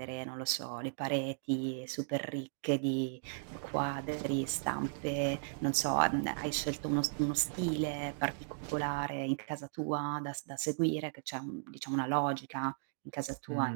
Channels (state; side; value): silent; left; digital silence